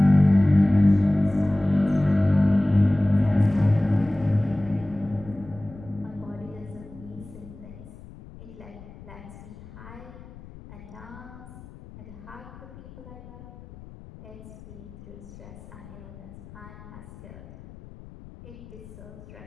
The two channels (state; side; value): noise; left; rumble, 18 dB below the sound